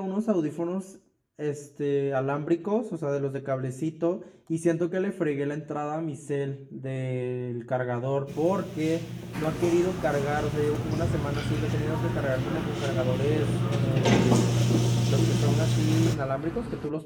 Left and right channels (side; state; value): both; identical; correlation 1.00